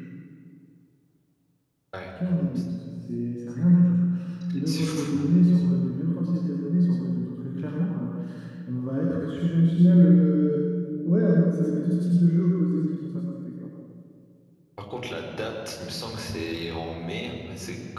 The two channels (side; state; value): both; identical; correlation 1.00